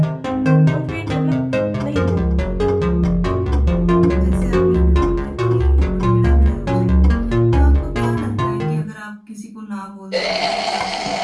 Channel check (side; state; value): both; identical; correlation 1.00